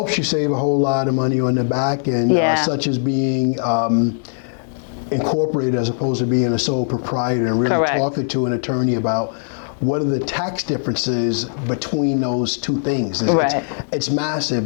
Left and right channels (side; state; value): right; silent; digital silence